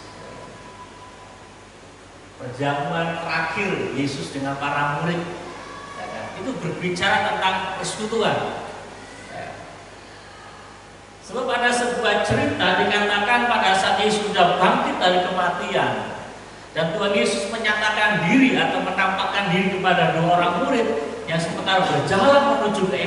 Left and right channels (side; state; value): both; identical; correlation 1.00